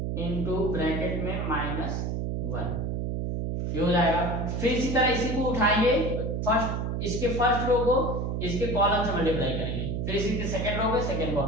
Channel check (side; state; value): right; noise; hum, 1 dB below the sound